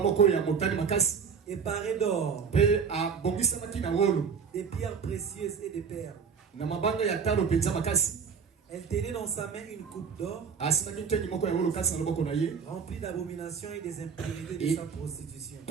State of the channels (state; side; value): quieter; left; 6.3 dB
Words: et parée d'or, des pierres précieuses et de perles. Elle tenait dans sa main une coupe d'or remplie d'abominations et des impurités de sa prostitution.